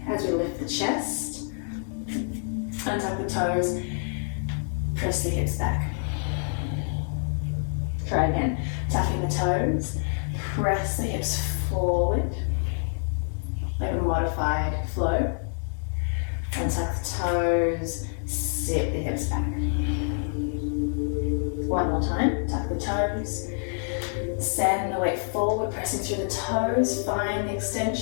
as we lift the chest, untuck the toes, press the hips back. Try again, tucking the toes, press the hips forward, like a modified flow, untuck the toes, sit the hips back. One more time, tuck the toes, send the weight forward, pressing through the toes, find the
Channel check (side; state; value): right; silent; digital silence